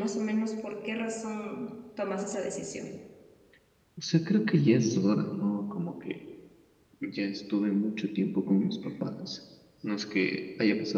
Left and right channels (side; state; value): both; identical; correlation 1.00